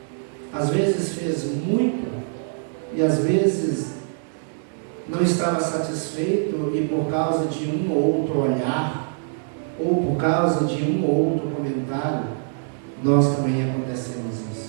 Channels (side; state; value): left; silent; 63 dB below the other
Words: às vezes fez muito e às vezes não estava satisfeito, e por causa de um ou outro olhar, ou por causa de um ou outro comentário, nós também acontecemos